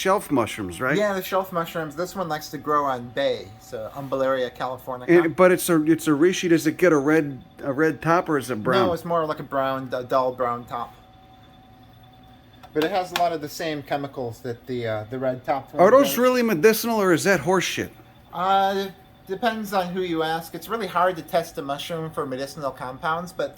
mushrooms, right? Yeah, the shelf mushrooms. This one likes to grow on bay, so Umbelleria californica. But it's a reishi. Does it get a red top or is it brown? No, it's more like a dull brown top. But it has a lot of the same chemicals that the red top one Are those does. really medicinal or is that horse shit? Depends on who you ask. It's really hard to test a mushroom for medicinal compounds, but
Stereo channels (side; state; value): both; identical; correlation 1.00